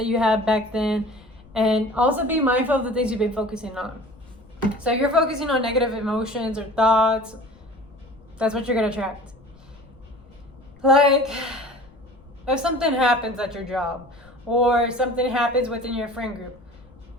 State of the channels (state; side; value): noise; left; rumble, 27 dB below the sound